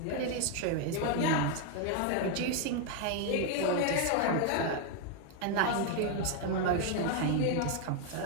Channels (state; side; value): different; both; correlation 0.01